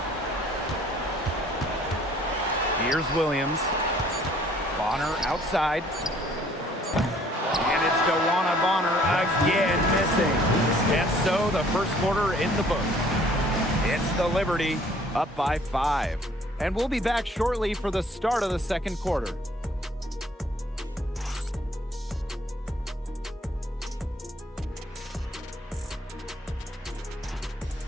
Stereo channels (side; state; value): both; normal; correlation 0.58